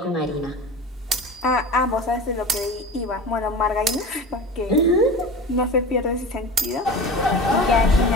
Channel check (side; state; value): both; normal; correlation 0.32